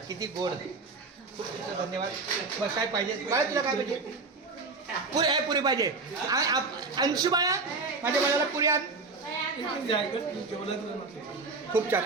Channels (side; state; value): left; quieter; 4.0 dB